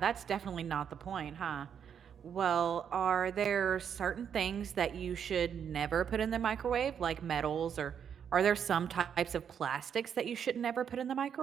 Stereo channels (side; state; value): left; quieter; 8.0 dB